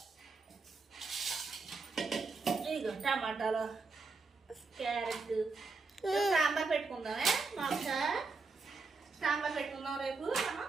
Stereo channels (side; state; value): left; quieter; 4.2 dB